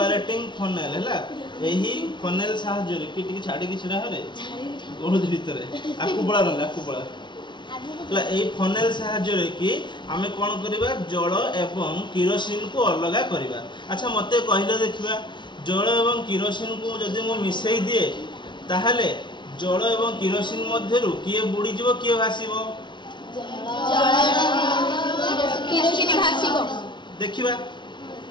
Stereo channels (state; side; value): late; right; 0.23 ms